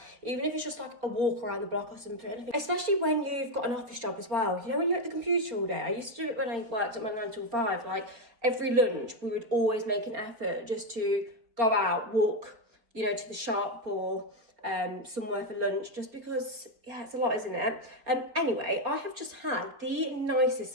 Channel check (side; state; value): left; late; 4.3 ms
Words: even if it's just like a walk around the block or something. Especially when you've got an office job as well. You know, when you're at the computer all day. I used to do it when I worked at my 9 till 5, like every lunch we would always make an effort just to go out, walk, you know, to the shop or somewhere for lunch, just because, yeah, it's a lot, isn't it? Anyway, I have just had the nicest